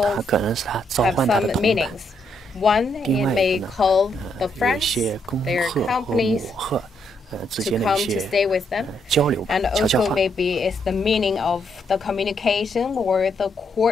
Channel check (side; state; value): both; normal; correlation 0.76